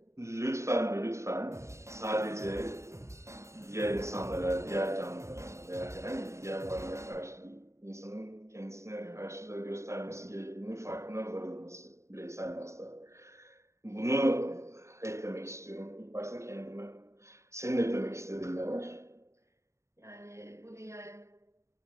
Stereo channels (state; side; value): late; left; 0.14 ms